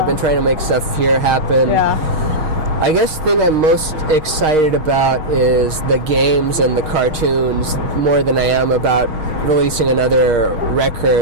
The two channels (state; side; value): late; left; 6.4 ms